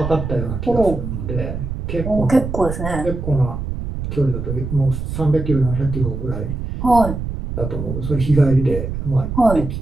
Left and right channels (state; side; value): noise; right; rumble, 5 dB below the sound